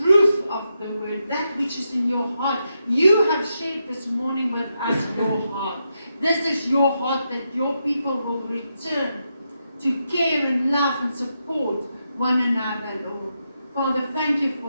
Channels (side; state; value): both; inverted; correlation -0.84